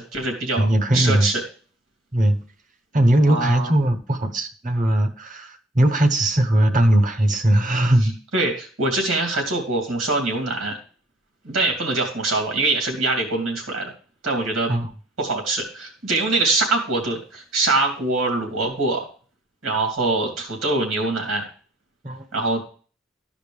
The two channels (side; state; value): both; normal; correlation 0.61